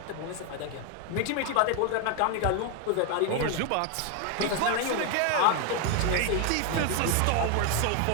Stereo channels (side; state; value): both; different; correlation 0.01